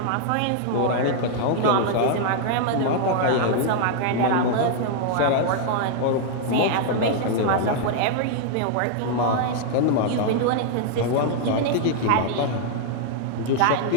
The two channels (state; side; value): different; both; correlation -0.01